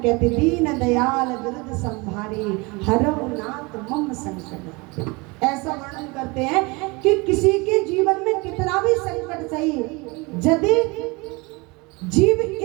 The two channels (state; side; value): quieter; left; 26.3 dB